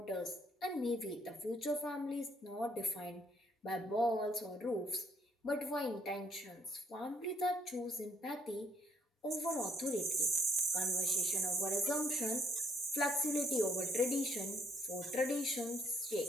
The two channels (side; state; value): both; normal; correlation 0.66